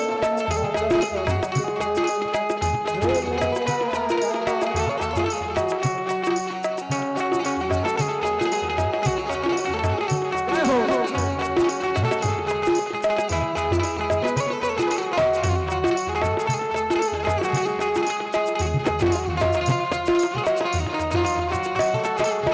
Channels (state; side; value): identical; both; correlation 1.00